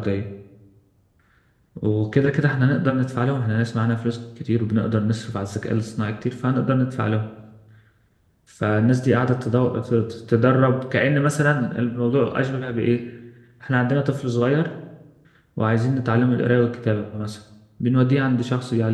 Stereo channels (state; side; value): identical; both; correlation 1.00